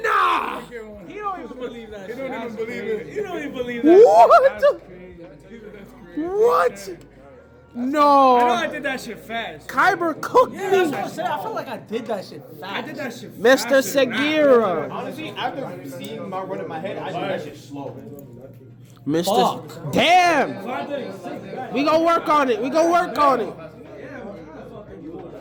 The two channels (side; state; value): both; identical; correlation 1.00